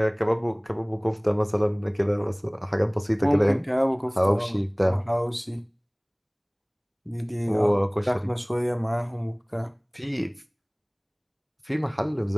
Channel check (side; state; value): both; identical; correlation 1.00